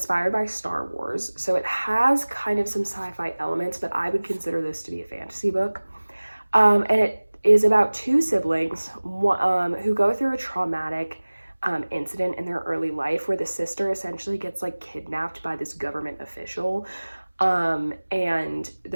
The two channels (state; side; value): inverted; both; correlation -1.00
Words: by Star Wars, so it has kind of some sci-fi elements, but I would consider this to be a fantasy book. And it is about 2 siblings who go through a traumatic incident in their early life where the sister essentially gets like kidnapped by this government official, and